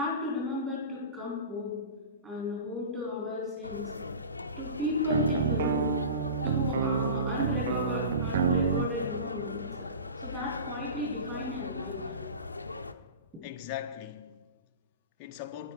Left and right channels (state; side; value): inverted; both; correlation -0.33